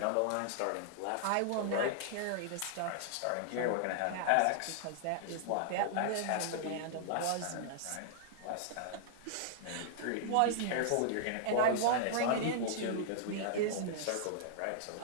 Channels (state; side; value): different; both; correlation -0.01